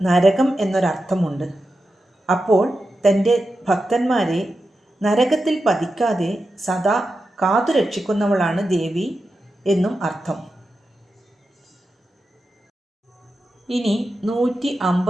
നരകം എന്നൊരർത്ഥമുണ്ട്. അപ്പോൾ തൻ്റെ ഭക്തന്മാരെ നരകത്തിൽ പതിക്കാതെ സദാ കാത്തുരക്ഷിക്കുന്നവളാണ് ദേവി എന്നും അർത്ഥം. ഇനി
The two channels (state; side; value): normal; both; correlation 0.90